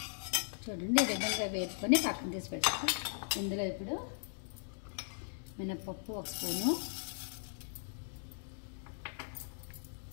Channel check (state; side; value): silent; right; digital silence